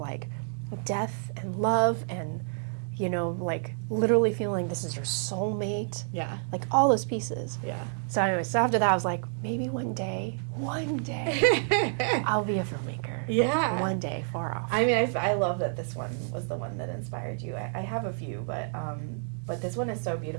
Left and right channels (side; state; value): left; silent; digital silence